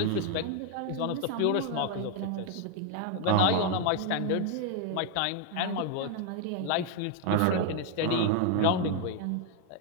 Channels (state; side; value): different; both; correlation 0.00